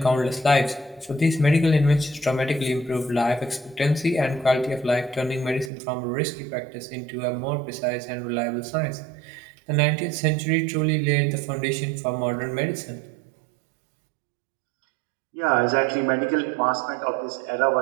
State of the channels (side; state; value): left; drops out; at 5.7 s